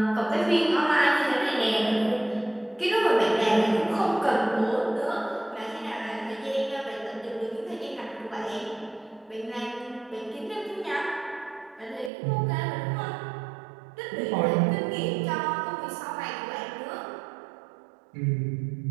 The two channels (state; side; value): drops out; left; at 12.1 s